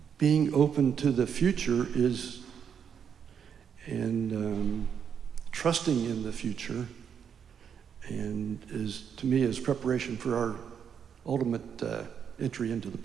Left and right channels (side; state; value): left; quieter; 7.6 dB